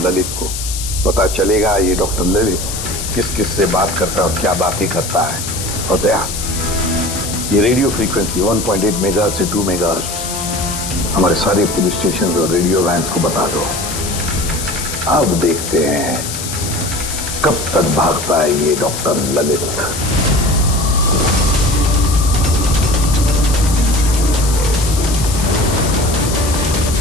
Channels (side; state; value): left; noise; hiss, 6 dB below the sound